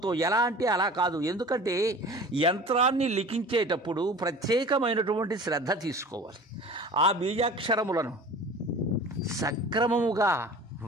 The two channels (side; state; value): both; normal; correlation 0.41